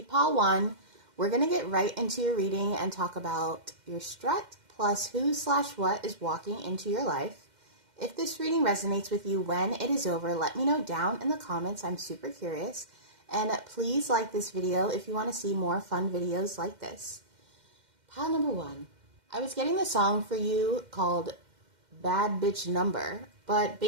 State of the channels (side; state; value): left; late; 2.1 ms